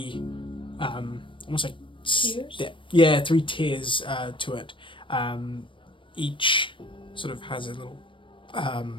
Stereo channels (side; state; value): right; late; 0.25 ms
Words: almost like Tiers? yeah, 3 tiers to it. Each sort of has a little,